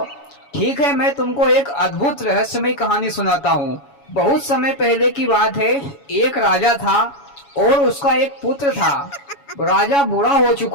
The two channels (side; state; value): right; late; 7.1 ms